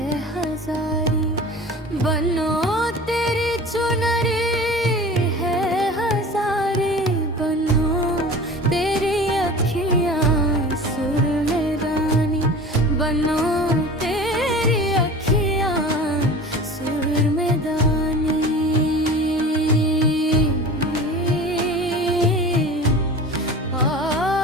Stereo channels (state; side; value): normal; both; correlation 0.38